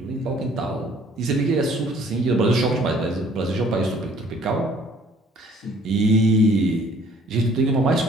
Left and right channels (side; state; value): both; normal; correlation 0.57